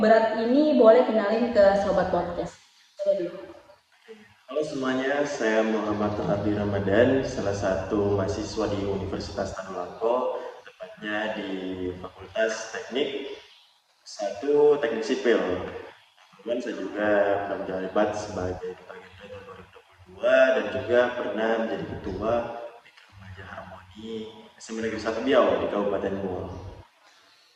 berat ini, boleh kenalin ke Sobat Podcast. Halo semuanya, saya Muhammad Rahardi Ramadan, salah satu mahasiswa di Universitas Tadulako, tepatnya di Fakultas Teknik 1 Teknik Sipil. Kemudian saya juga pernah menjabat sebagai duta genre tahun 2022 dan juga pernah menjadi ketua PIK Remaja Harmoni SMA Negeri 1 Biau di Kabupaten Buol.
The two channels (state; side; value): identical; both; correlation 1.00